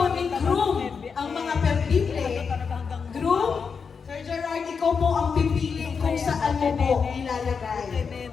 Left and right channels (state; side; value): quieter; right; 5.8 dB